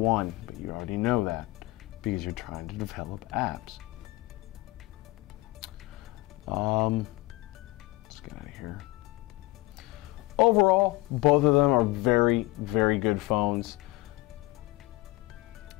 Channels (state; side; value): quieter; right; 20.6 dB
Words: but you already know that because you're trying to develop apps. Let's get out of here. Overall, both of them are very, very good phones.